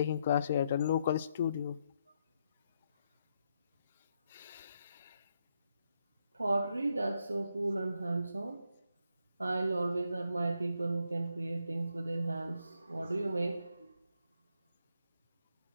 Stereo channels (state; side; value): inverted; both; correlation -0.78